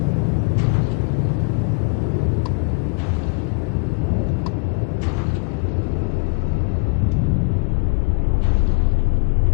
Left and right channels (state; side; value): quieter; right; 33.2 dB